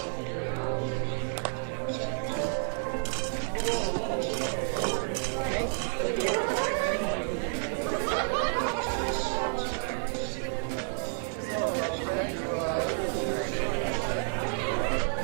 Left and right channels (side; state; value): left; silent; 58 dB below the other